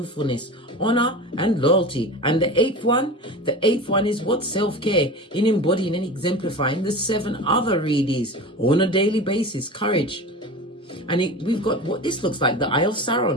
honor, and loyalty. And the eighth one is what? Self-care, in embodying and exemplifying the 7 other readies on a daily basis. Courage. And we've got what this looks like, the Eye of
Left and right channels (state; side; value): normal; both; correlation 0.32